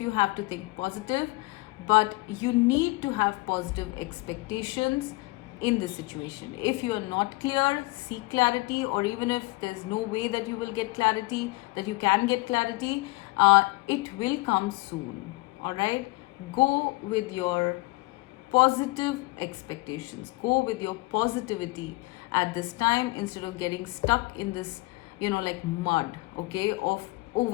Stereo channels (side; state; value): right; quieter; 23.6 dB